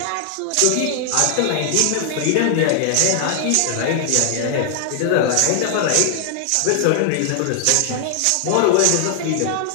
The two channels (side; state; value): both; different; correlation 0.00